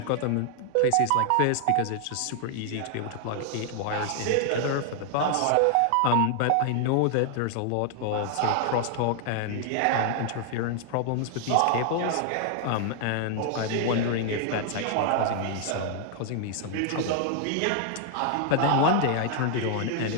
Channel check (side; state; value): both; different; correlation 0.00